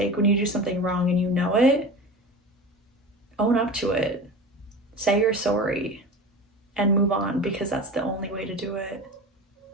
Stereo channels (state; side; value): normal; both; correlation 0.31